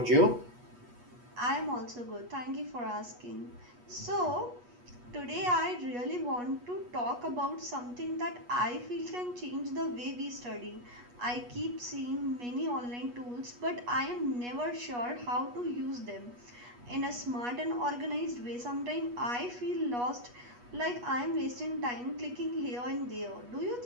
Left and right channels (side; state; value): left; late; 8.3 ms